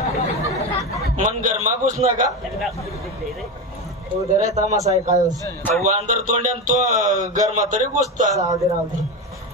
मन गरमा घुस नका. उदर तमासा आहे काय वांदर तोंड्यान तो गरमा तरी घुसता. राहू दे राहू दे.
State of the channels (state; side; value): normal; both; correlation 0.18